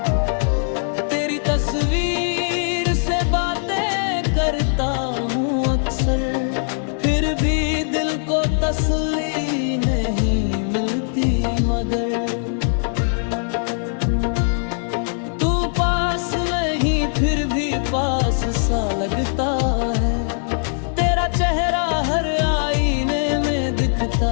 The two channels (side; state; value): right; silent; digital silence